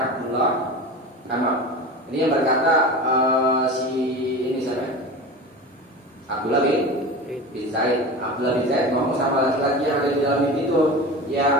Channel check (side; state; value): both; normal; correlation 0.30